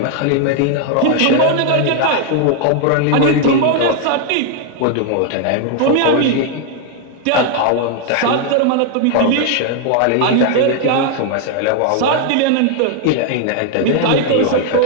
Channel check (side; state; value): both; different; correlation 0.00